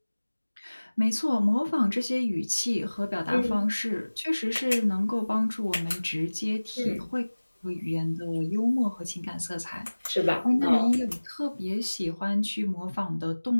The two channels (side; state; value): both; inverted; correlation -1.00